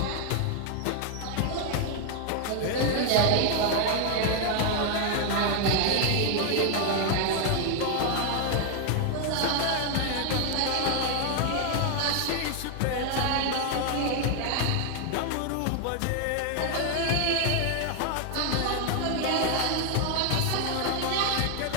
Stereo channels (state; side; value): different; both; correlation 0.00